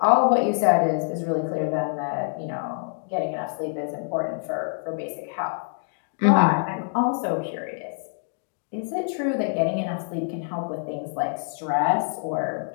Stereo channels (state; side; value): silent; right; digital silence